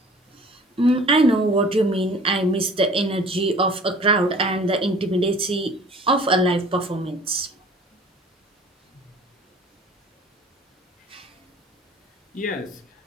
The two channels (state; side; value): normal; both; correlation 0.48